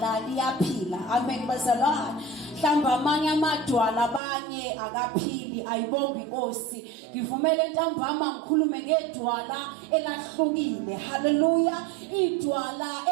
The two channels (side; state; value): left; drops out; at 4.2 s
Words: liyaphila. Amen bazalwane. Mhlamba amanye amadwala abanye akaphili ayibonga inkosi. Ngivumele ntambama ngikhulume ngeDwala elahlukile. Hallelujah. iDwala